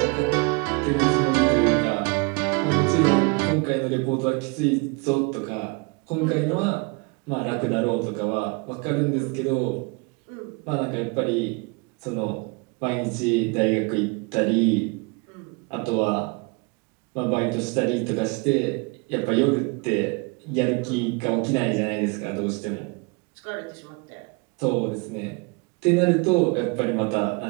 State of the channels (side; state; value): left; quieter; 30.5 dB